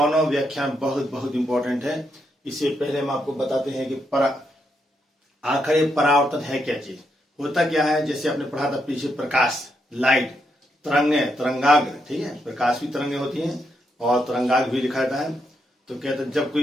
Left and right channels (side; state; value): both; normal; correlation 0.80